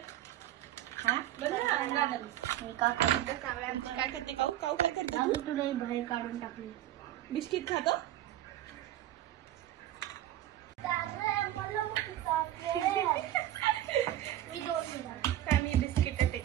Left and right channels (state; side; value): quieter; left; 13.0 dB